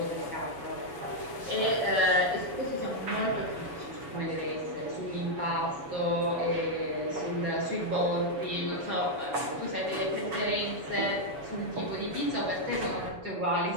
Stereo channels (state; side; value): late; left; 7.1 ms